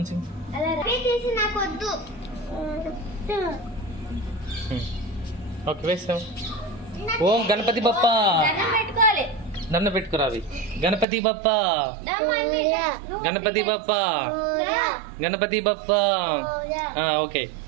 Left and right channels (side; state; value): left; drops out; at 11.1 s